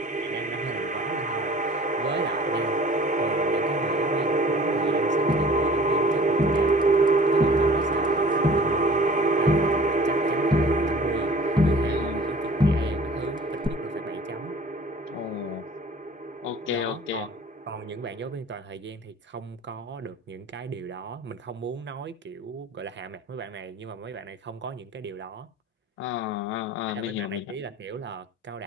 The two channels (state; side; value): normal; both; correlation 0.47